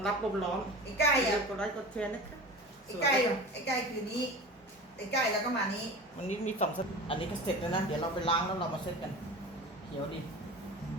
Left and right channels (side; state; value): both; normal; correlation 0.34